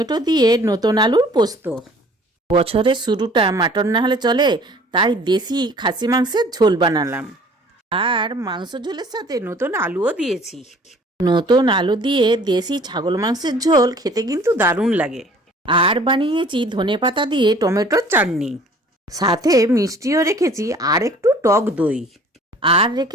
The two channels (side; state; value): both; normal; correlation 0.52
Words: দিয়ে নতুন আলুর পোস্ত। বছরের শুরুটা মাটন না হলে চলে, তাই দেশি খাসি মাংসের ঝোল বানালাম। আর মাংস ঝোলের সাথে নতুন আলুও দিয়েছি। নতুন আলু দিয়ে দেশি ছাগল মাংসের ঝোল খেতে কিন্তু দারুণ লাগে। আর বানিয়েছি ধনেপাতা দিয়ে টমেটোর চাটনি, সাথে মিষ্টিও রেখেছি আর একটু টক দই, আর